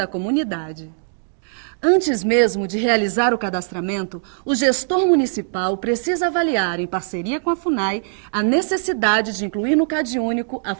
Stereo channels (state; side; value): silent; left; digital silence